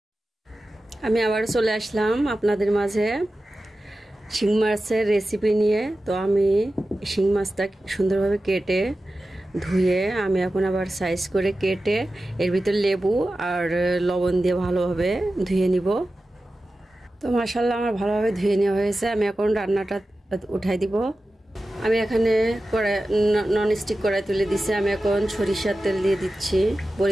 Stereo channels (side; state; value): both; normal; correlation 0.94